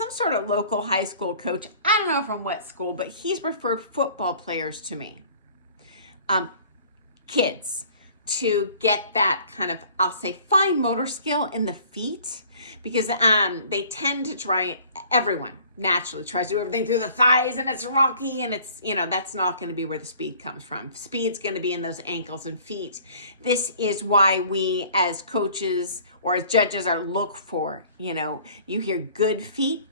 sort of local high school coach. I don't know from what school, but he's referred football players to me. Kids, to get that kind of, I'll say, fine motor skill in the feet, because they tend to try, everyone naturally tries to do everything through the thighs, and it's rocky, and it's, that's not going to be where the speed comes from. Speed's going to be in those ankles and feet. This is why we as coaches or as judges are look for, you hear good feet,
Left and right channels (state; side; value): inverted; both; correlation -0.51